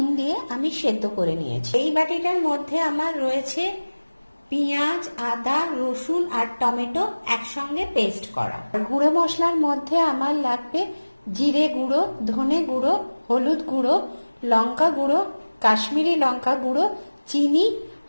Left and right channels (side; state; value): both; inverted; correlation -1.00